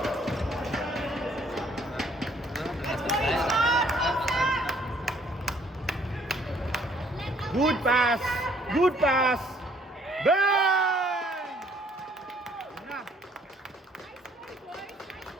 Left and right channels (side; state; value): both; normal; correlation 0.63